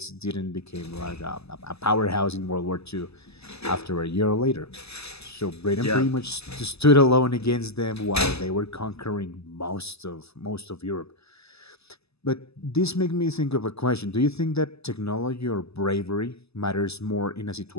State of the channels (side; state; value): right; late; 0.79 ms